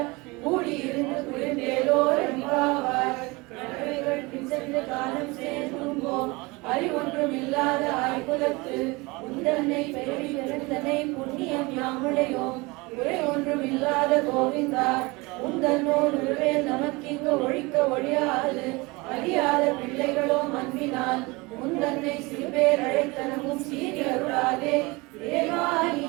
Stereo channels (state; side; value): quieter; left; 24.6 dB